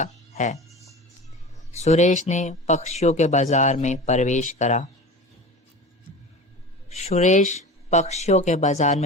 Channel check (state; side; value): normal; both; correlation 0.33